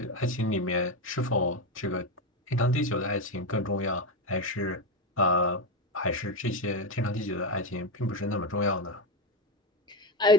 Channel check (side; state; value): both; normal; correlation 0.13